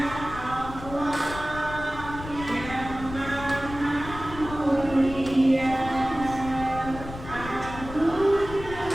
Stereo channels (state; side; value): noise; left; rumble, 12 dB below the sound